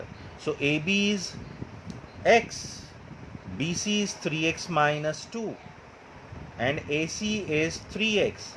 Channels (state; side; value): identical; both; correlation 1.00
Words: So AB is x, BC is 3x minus 2, and AC is 3x.